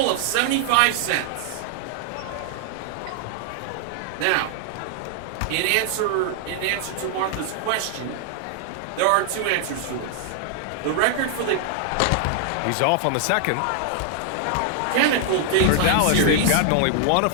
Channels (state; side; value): different; both; correlation 0.00